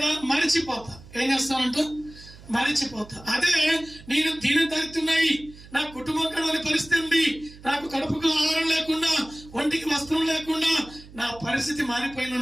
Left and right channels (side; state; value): right; noise; hum, 20 dB below the sound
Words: మరిచిపోతా. ఏం చేస్తానంట? మరిచిపోతా. అదే నేను దీని దరిద్రున్నాయి, నా కుటుంబం కడవని పరిస్థితి ఉంది, నాకు కడుపుకు ఆహారం లేకుండా, ఒంటికి వస్త్రం లేకుండా నా పరిస్థితి